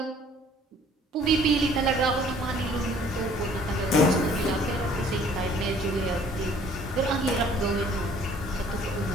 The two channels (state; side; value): normal; both; correlation 0.56